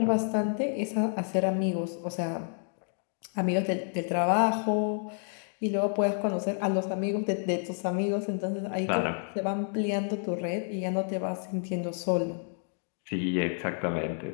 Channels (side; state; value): right; silent; 58 dB below the other